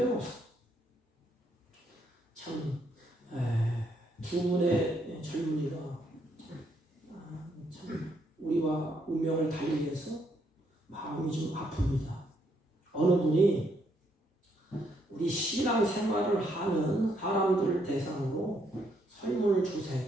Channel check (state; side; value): normal; both; correlation 0.73